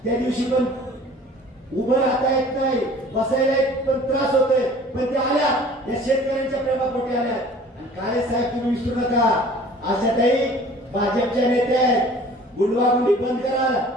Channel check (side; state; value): both; normal; correlation 0.48